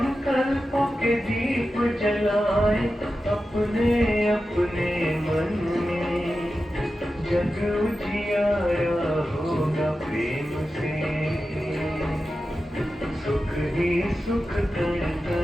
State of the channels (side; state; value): both; normal; correlation 0.92